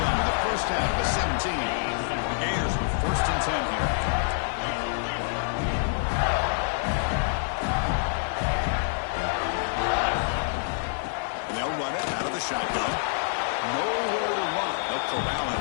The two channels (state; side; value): silent; right; digital silence